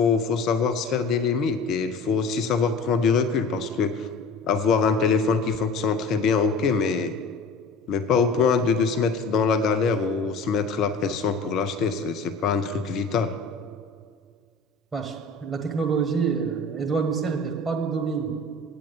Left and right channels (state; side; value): quieter; right; 3.4 dB